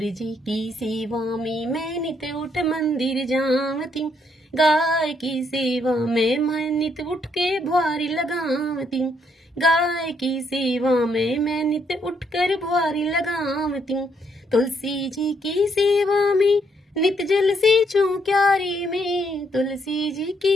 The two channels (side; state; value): both; normal; correlation 0.73